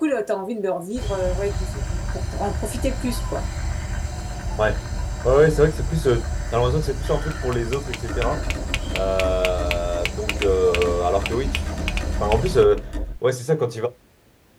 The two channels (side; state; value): both; identical; correlation 1.00